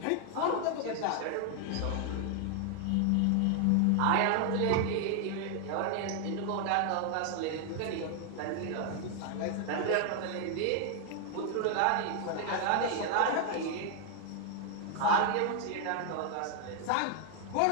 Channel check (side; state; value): both; different; correlation 0.00